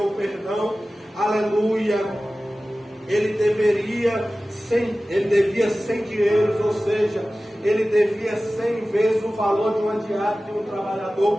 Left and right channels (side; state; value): both; normal; correlation 0.96